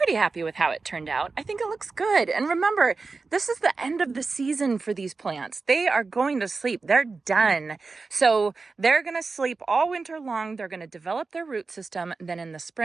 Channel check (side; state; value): left; quieter; 4.2 dB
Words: happy with how it turned out. I think it looks good. And remember, this is the end of the season for these plants. They are going to sleep. They're done. So they're going to sleep all winter long. They're going to develop their root system. Then in the